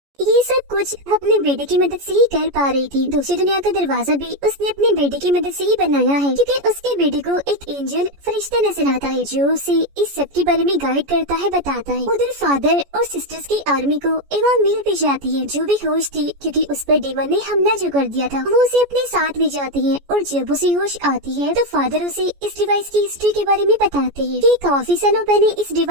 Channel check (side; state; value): left; late; 14 ms